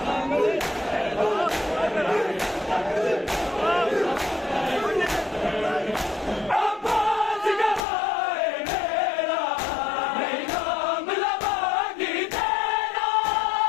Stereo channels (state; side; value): drops out; right; at 7.8 s